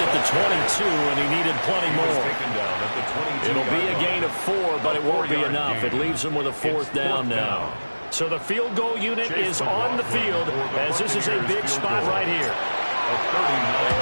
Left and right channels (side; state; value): both; inverted; correlation -1.00